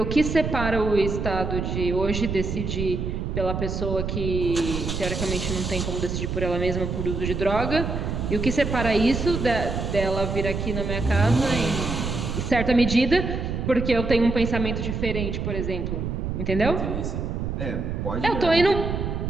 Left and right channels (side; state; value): right; noise; rumble, 3 dB below the sound